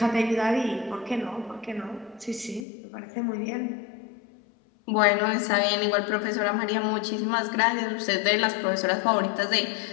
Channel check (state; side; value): drops out; right; at 2.7 s